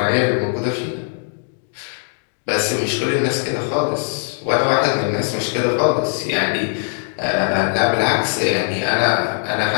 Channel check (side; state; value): right; silent; digital silence